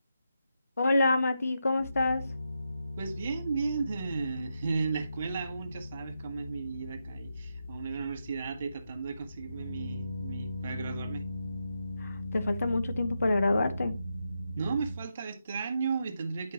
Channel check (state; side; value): inverted; both; correlation -0.84